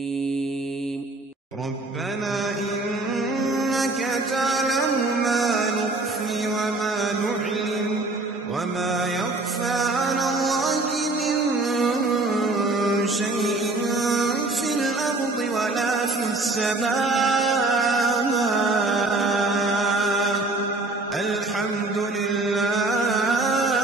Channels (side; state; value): left; quieter; 3.0 dB